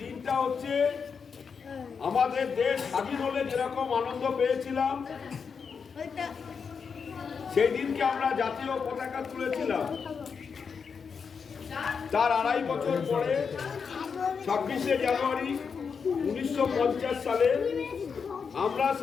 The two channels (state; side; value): quieter; right; 5.9 dB